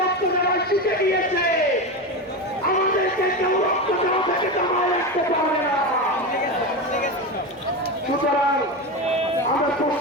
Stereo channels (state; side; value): normal; both; correlation 0.19